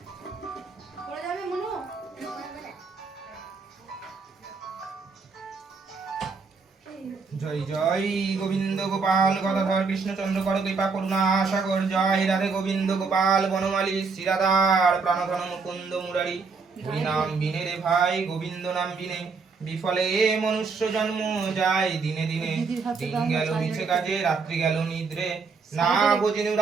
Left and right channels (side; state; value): left; quieter; 4.7 dB